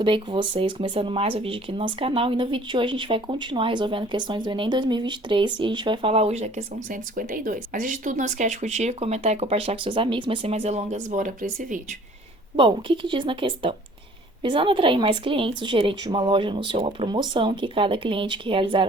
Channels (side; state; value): both; normal; correlation 0.52